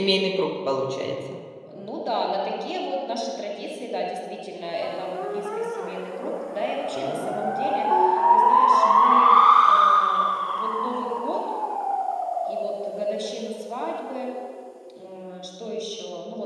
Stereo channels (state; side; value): identical; both; correlation 1.00